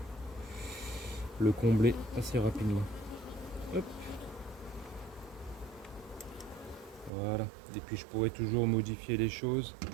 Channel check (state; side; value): drops out; left; at 7.1 s